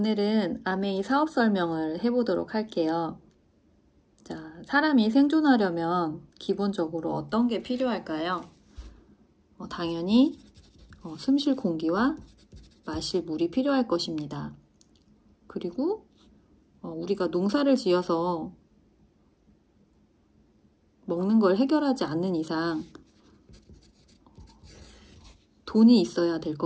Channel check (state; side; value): identical; both; correlation 1.00